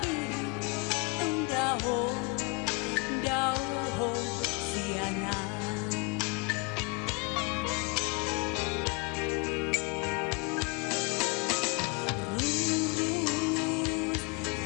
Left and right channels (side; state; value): right; quieter; 30.2 dB